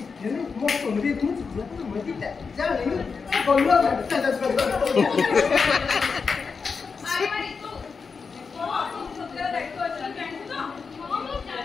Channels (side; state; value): right; quieter; 5.2 dB